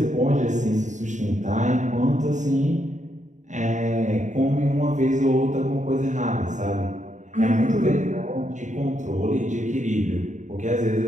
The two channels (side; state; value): left; late; 0.35 ms